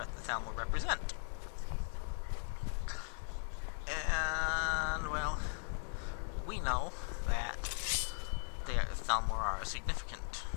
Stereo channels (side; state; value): right; silent; 52 dB below the other